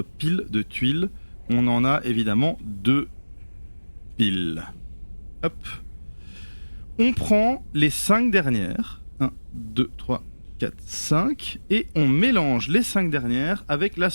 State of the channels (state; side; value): inverted; both; correlation -1.00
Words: pile de tuiles. On en a évidemment 2 piles. Hop. On prend les 5 dernières. 1, 2, 3, 4, 5. Et on mélange les 5 dernières avec la